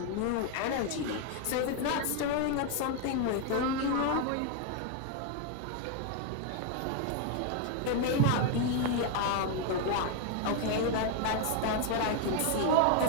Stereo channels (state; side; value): different; both; correlation 0.00